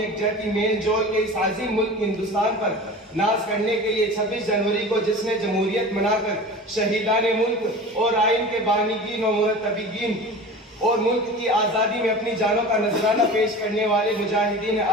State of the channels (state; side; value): normal; both; correlation 0.35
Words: میل جول کے اس عظیم ملک ہندوستان پر ناز کرنے کے لیے 26 جنوری کو جشن جمہوریت منا کر شہیدان ملک اور آئین کے بانیگین و مرتبین اور ملک کی آزادی میں اپنی جانوں کا نذرانہ پیش کرنے والے مجاہدین